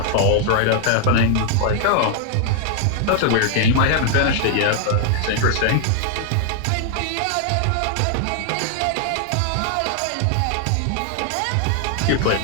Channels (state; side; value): different; both; correlation 0.00